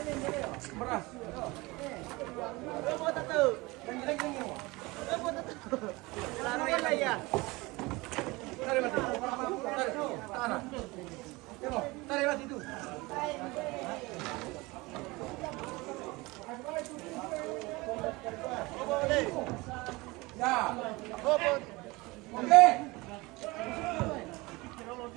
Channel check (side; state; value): left; quieter; 23.0 dB